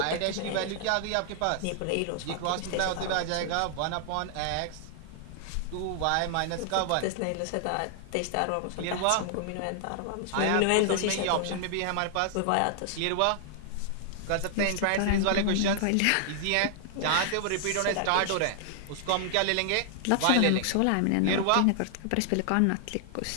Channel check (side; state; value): both; different; correlation 0.00